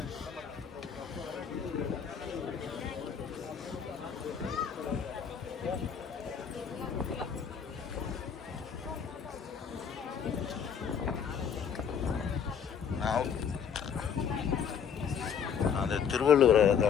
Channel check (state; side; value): quieter; right; 7.4 dB